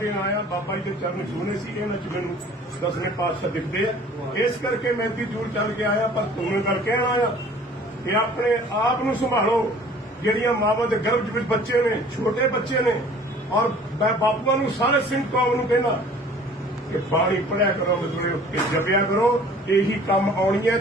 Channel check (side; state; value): both; normal; correlation 0.50